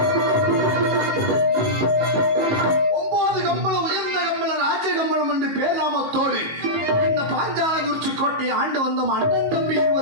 9 கம்பளம், உயர்ந்த கம்பளம், ராஜ கம்பளம் என்று பேர்நாமத்தோடு இந்த பாஞ்சாலங்குறிச்சி கோட்டையை ஆண்டு வந்த அண்ணன் தம்பி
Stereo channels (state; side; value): late; left; 19 ms